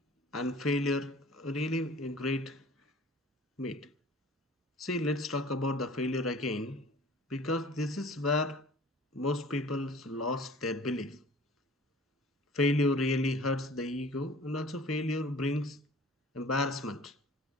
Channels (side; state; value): both; normal; correlation 0.46